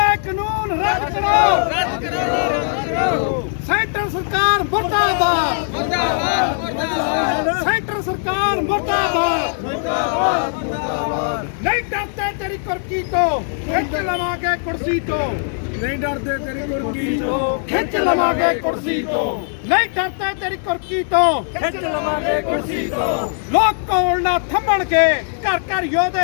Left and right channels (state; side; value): silent; right; digital silence